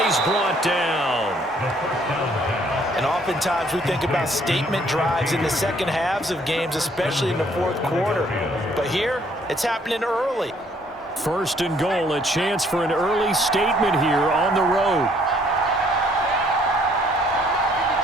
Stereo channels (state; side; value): normal; both; correlation 0.64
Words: he's brought down. And oftentimes we think about statement drives in the second halves of games, especially in the fourth quarter. But here, it's happening early. 1st and goal, a chance for an early statement here on the road.